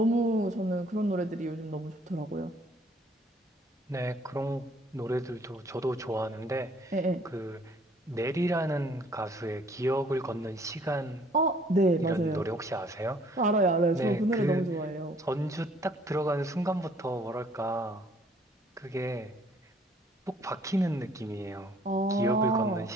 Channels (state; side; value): normal; both; correlation 0.60